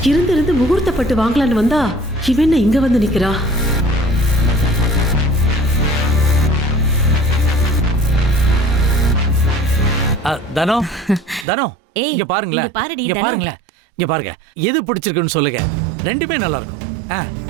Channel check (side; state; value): left; drops out; at 11.5 s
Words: இருந்து முகூர்த்தப்பட்டு வாங்கலான்னு வந்தா இவன் என்ன இங்க வந்து நிக்கிறா? தனோ தனோ இங்க பாருங்களேன், இங்க பாருங்களேன், இங்க பாருங்க. எது பிடிச்சிருக்குன்னு சொல்லுங்க. ரெண்டுமே நல்லா இருக்கும்.